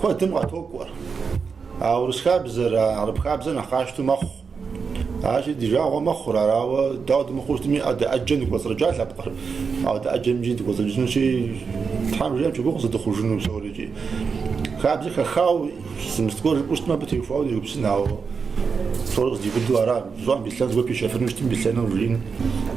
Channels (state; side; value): quieter; left; 5.5 dB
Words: كوا تمغى توقع أو رسخابزة عرب خابزة نخاشتو مخ عاشي ديجا هو مخ راو داود مخوش تمي أجن قصر رجال لبقر أو أجن جيد قصر جنو شيء تحمل جام شو قصر دخول جنو سوري خابزة خاو سمستقول بوست ما بتيفاو يبسنا أو صورة دي بدو أرا زوان بيسلان زوان بيشافر نشتم بيسلان ورين